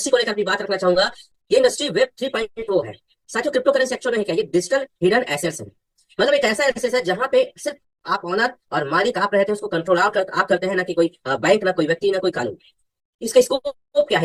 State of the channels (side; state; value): both; identical; correlation 1.00